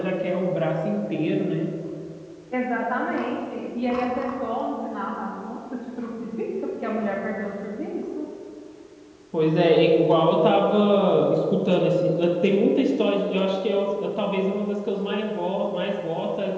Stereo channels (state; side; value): identical; both; correlation 1.00